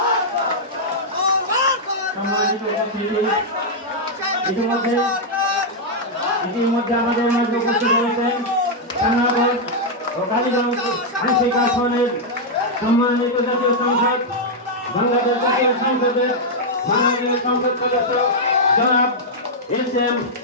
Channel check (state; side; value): normal; both; correlation -0.04